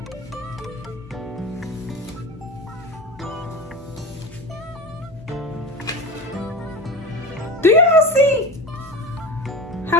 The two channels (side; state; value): both; normal; correlation 0.30